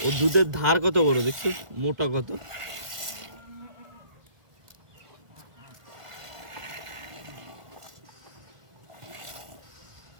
ও দুধের ধার কত বড় দেখছিস, মোটা কত।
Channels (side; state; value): left; late; 1.4 ms